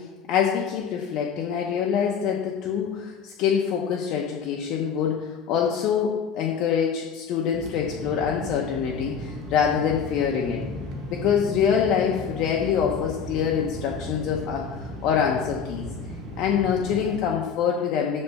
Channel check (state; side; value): quieter; right; 7.0 dB